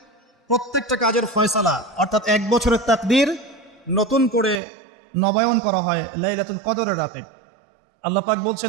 প্রত্যেকটা কাজের ফয়সালা অর্থাৎ 1 বছরের তাকদীর নতুন করে নবায়ন করা হয় লাইলাতুল কদরের রাতে। আল্লাহ পাক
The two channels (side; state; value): left; drops out; at 4.6 s